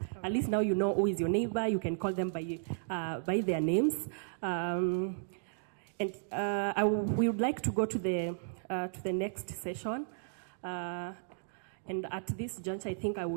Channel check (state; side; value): silent; left; digital silence